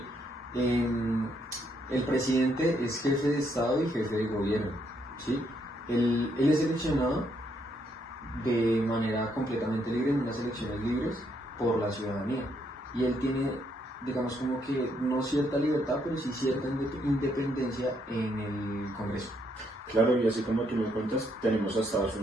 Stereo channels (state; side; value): normal; both; correlation 0.74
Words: El presidente es jefe de Estado y jefe de gobierno, ¿sí? Él es seleccionado de manera completamente libre, en unas elecciones libres, por la ciudadanía. Y él tiene, digamos, como que no cierta libertad, pero sí cierta independencia en el Congreso. Claro, y así como tú me cuentas, tenemos a Estados